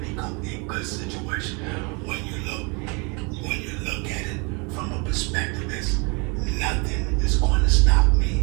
become a good situation when you look at it from a perspective is nothing is going to stop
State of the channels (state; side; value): quieter; left; 31.6 dB